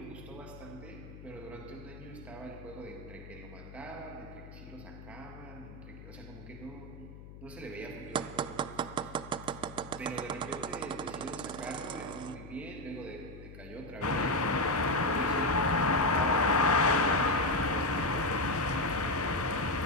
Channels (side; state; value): left; noise; hum, 15 dB below the sound